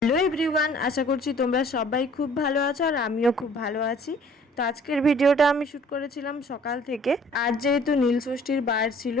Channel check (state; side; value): normal; both; correlation 0.54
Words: Hello everyone, আশা করছি তোমরা সবাই খুব ভালো আছো আর আমিও খুব ভালো আছি। তো আজকের ভিডিওটা আমি শ্যুট করেছিলাম সকাল থেকে। আজ যেহেতু নীলষষ্ঠীর বার ছিল